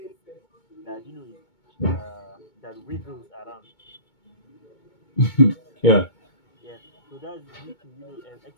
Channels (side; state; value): right; late; 2.2 ms